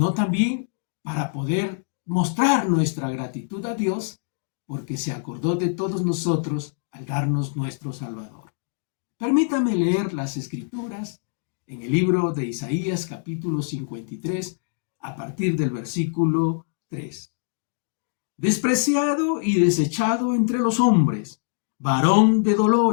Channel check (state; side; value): silent; right; digital silence